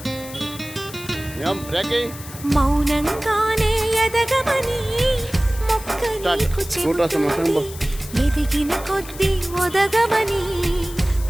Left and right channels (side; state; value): left; noise; hiss, 15 dB below the sound